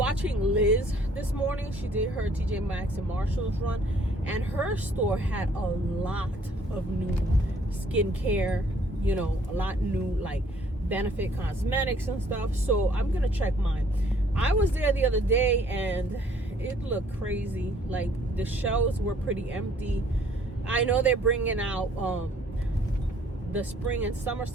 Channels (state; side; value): normal; both; correlation 0.60